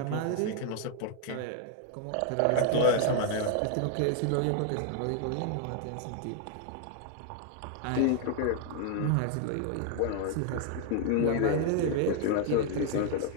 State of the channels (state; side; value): different; both; correlation 0.00